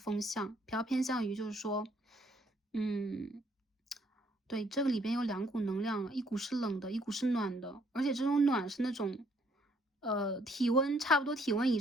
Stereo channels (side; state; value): both; normal; correlation 0.67